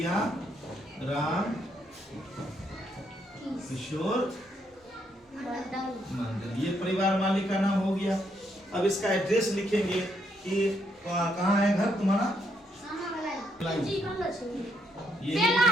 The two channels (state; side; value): normal; both; correlation 0.75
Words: राम किशोर मंडल, ये परिवार मालिक का नाम हो गया। अब इसका एड्रेस लिखेंगे कि कहाँ है घर तुम्हारा, ये